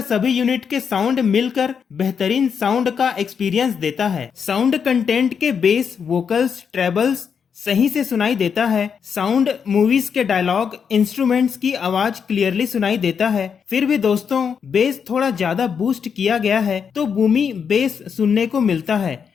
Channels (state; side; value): quieter; right; 6.8 dB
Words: सभी यूनिट के साउंड मिलकर बेहतरीन साउंड का एक्सपीरियंस देता है। साउंड कंटेंट के बेस, वोकल्स, ट्रेबल्स सही से सुनाई देता है। साउंड मूवीज के डायलॉग, इंस्ट्रूमेंट्स की आवाज क्लियरली सुनाई देता है। फिर भी दोस्तों बेस थोड़ा ज्यादा बूस्ट किया गया है तो बूमी बेस सुनने को मिलता है